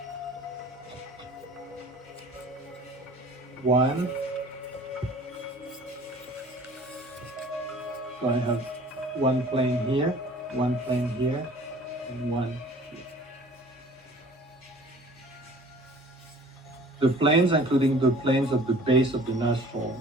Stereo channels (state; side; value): normal; both; correlation 0.48